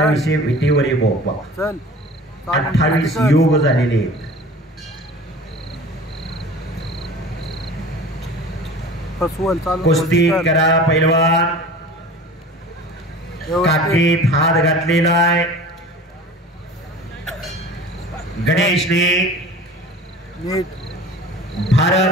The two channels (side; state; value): both; normal; correlation 0.41